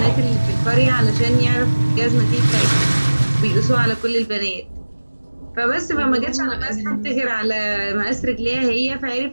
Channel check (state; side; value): inverted; both; correlation -1.00